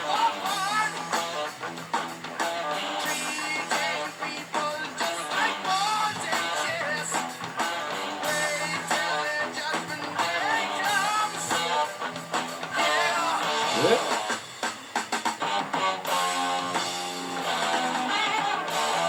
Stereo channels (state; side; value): identical; both; correlation 1.00